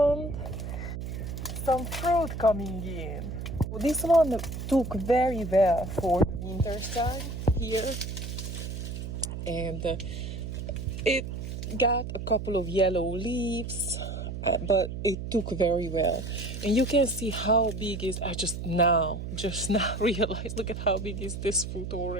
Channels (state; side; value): noise; right; hum, 6 dB below the sound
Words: some fruit coming in. This one took very well for the winter time here, and it got a couple of yellow leaves, but it took very well. And you can see how big is. I just now realized. Look at how big is this fruit